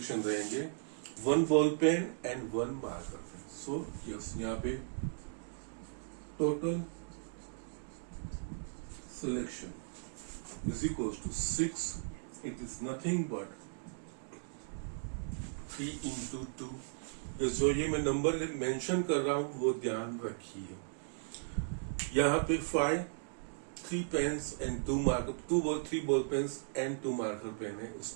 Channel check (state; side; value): silent; left; digital silence